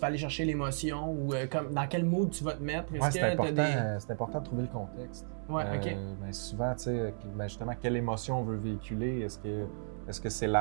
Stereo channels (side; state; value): left; silent; 55 dB below the other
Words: vas aller chercher l'émotion ou dans quel mood tu vas te mettre. C'est important de trouver le contexte. Ouais, OK. Mais souvent, tu sais, justement, quelle émotion on veut véhiculer? Est-ce que c'est